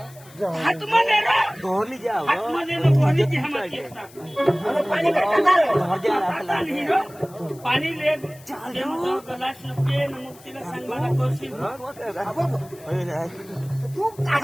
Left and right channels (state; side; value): noise; left; hiss, 23 dB below the sound